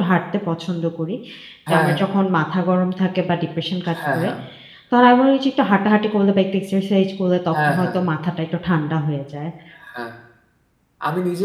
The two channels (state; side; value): identical; both; correlation 1.00